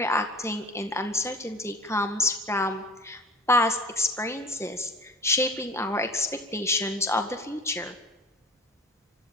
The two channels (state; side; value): normal; both; correlation 0.41